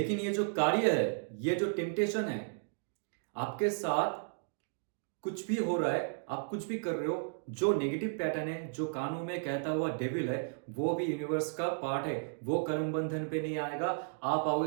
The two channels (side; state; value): left; silent; digital silence